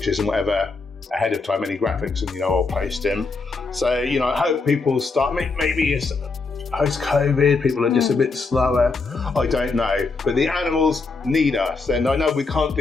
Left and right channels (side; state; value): right; quieter; 4.1 dB